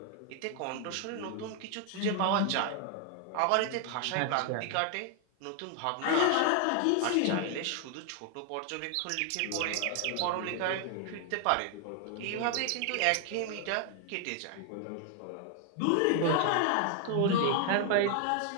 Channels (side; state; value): both; different; correlation 0.00